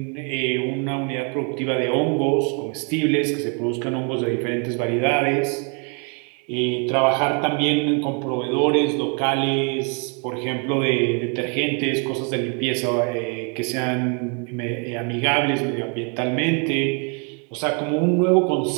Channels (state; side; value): quieter; left; 37.4 dB